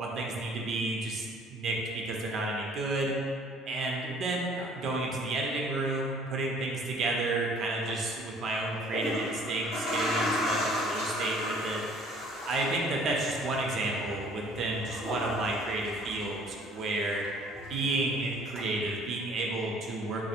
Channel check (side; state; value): both; normal; correlation 0.55